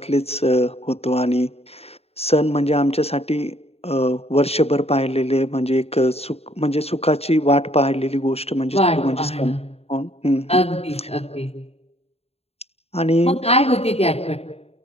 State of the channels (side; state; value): right; late; 0.29 ms